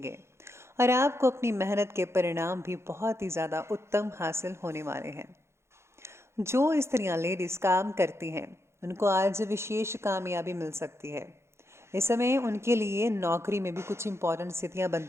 और आपको अपनी मेहनत के परिणाम भी बहुत ही ज़्यादा उत्तम हासिल होने वाले हैं। जो स्त्रियां, लेडीज़ काम करती हैं, उनको आज विशेष कामयाबी मिल सकती है। इस समय उनके लिए नौकरी में भी कुछ इंपॉर्टेंट स्थितियां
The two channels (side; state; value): left; late; 0.13 ms